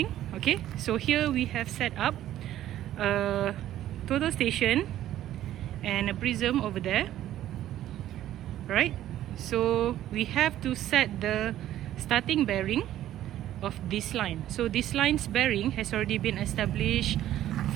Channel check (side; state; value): left; quieter; 12.8 dB